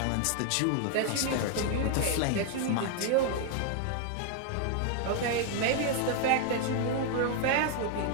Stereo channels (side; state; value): both; different; correlation 0.00